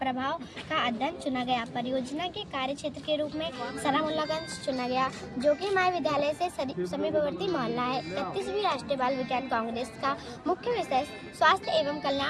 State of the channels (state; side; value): identical; both; correlation 1.00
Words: का अध्ययन चुना गया. परियोजना के कार्य क्षेत्र के रूप में सरामुल्लागंज चुना गया, जो कि हमारे विद्यालय से समीपवर्ती मोहल्ला है. 31वीं राष्ट्रीय बाल विज्ञान कांग्रेस का मुख्य विषय स्वास्थ्य एवं